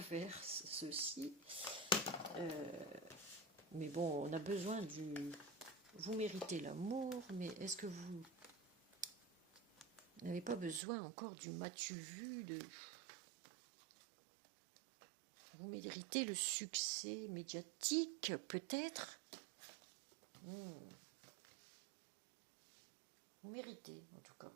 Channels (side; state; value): left; drops out; at 10.8 s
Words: faire ceci. Mais bon, on a besoin du... Vous méritez l'amour, mais est-ce que vous n'avez pas besoin encore du m'as-tu vu de... Vous méritez le succès médiatique, peut-être. Vous méritez, en tout cas.